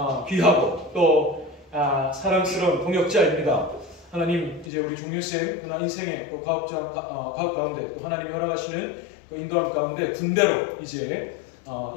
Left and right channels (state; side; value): drops out; right; at 4.7 s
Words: 귀하고 또 사랑스러운 동역자입니다. 하나님, 이제 우리 종윤쌤 그날 인생의 또 가업 가운데 또 하나님이 허락하시는 그 인도함 가운데 군대로 이제